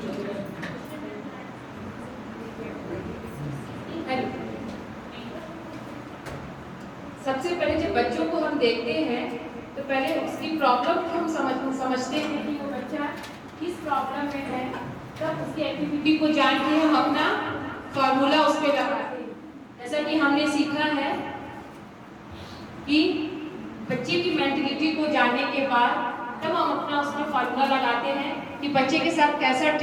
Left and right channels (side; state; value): both; identical; correlation 1.00